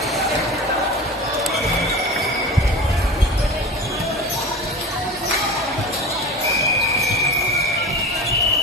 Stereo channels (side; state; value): both; normal; correlation 0.32